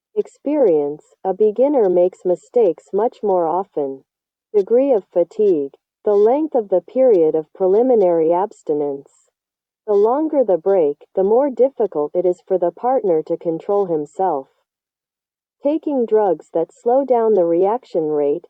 Experience, a beginner makes mistakes much more often. Degree of fatigue, the length of the period of preliminary abstinence. The longer the break, the more difficult it is for the partner to control himself. Taking drugs that slow down the reaction rate,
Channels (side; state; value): both; identical; correlation 1.00